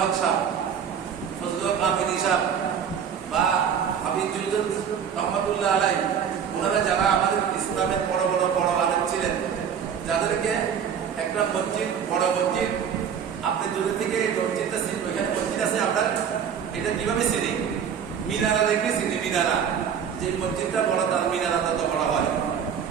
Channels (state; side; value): quieter; left; 7.8 dB